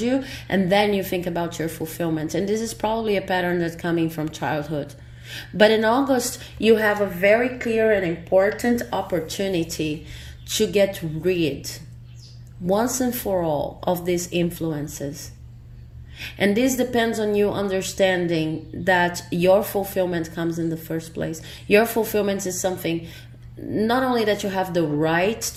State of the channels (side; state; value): both; identical; correlation 1.00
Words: and then you think about your fulfillment. And this is probably a pattern that's coming from childhood. But in August, you have a very clear and important opportunity to get rid, once and for all, of these influences. And this depends on you understanding that your fulfillment comes in the first place. Your fulfillment is something not only that you have the right